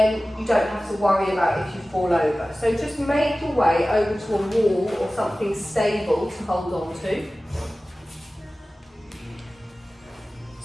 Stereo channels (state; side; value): normal; both; correlation 0.97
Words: you don't have to worry about if you fall over. So just make your way over to a wall or something stable to hold on to.